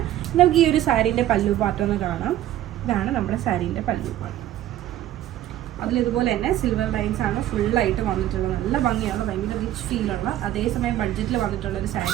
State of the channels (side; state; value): left; quieter; 13.0 dB